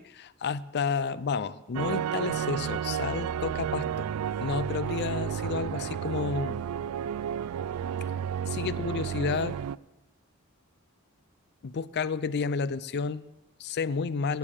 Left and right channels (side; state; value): both; normal; correlation 0.05